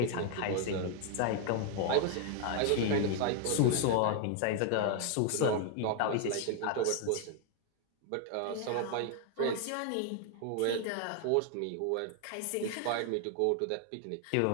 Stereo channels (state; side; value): different; both; correlation 0.00